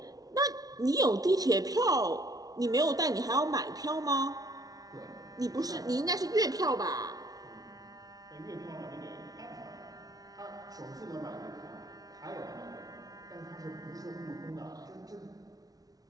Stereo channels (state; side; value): late; left; 0.18 ms